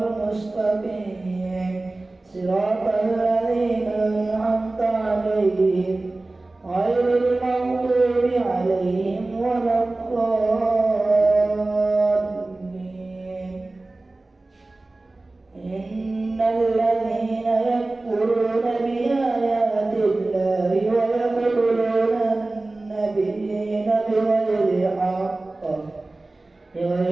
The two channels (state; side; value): quieter; left; 3.0 dB